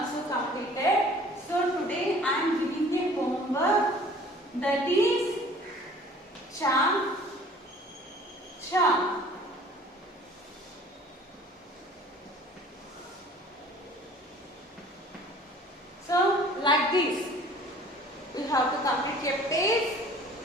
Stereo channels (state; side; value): normal; both; correlation 0.50